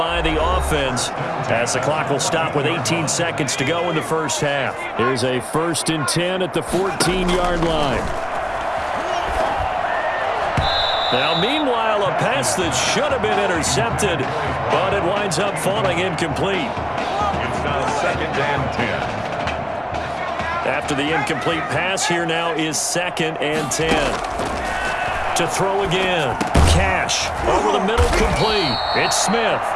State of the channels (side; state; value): both; identical; correlation 1.00